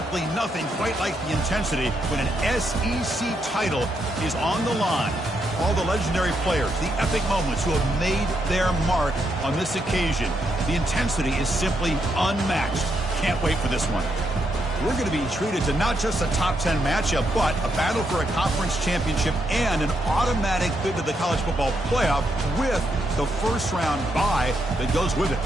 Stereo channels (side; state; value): both; normal; correlation 0.79